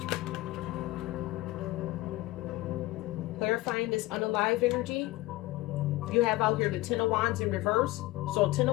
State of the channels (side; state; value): right; quieter; 18.8 dB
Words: Clarifying this unalive energy. You have out here the Ten of Wands in reverse. So Ten